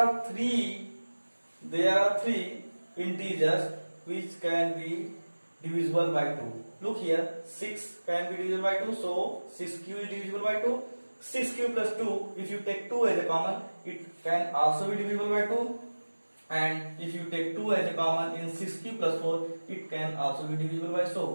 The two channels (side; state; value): both; inverted; correlation -1.00